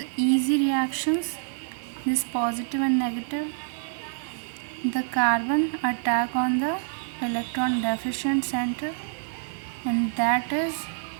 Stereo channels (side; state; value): left; silent; digital silence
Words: easy reactions, this positive and negative. The carbon attack on the electron deficient center, and that is